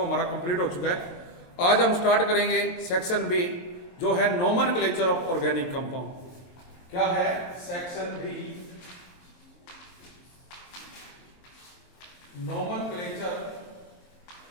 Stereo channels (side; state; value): right; late; 23 ms